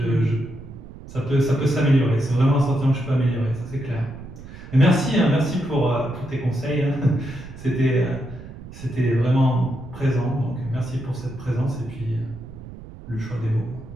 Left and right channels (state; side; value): noise; right; rumble, 15 dB below the sound